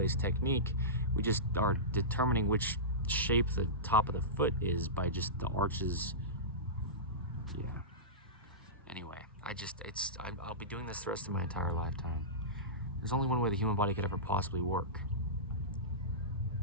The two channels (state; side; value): normal; both; correlation -0.18